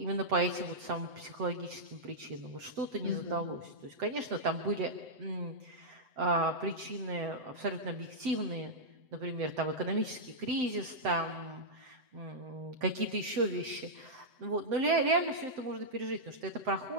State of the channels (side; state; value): left; late; 7.8 ms